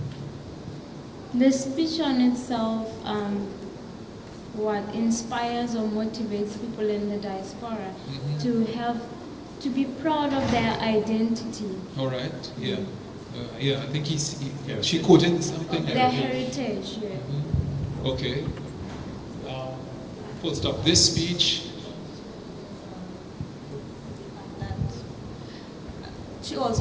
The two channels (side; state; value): both; identical; correlation 1.00